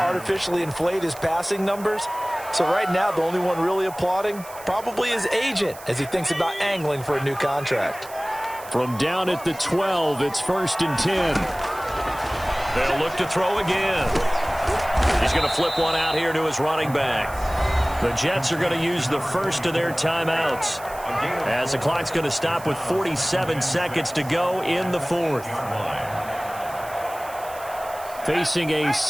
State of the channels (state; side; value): noise; right; hiss, 18 dB below the sound